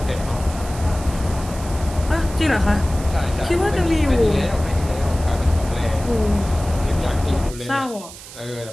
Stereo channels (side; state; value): right; noise; hiss, 16 dB below the sound